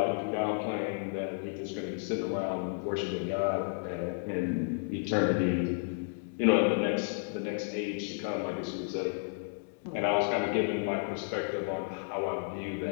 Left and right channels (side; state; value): right; silent; digital silence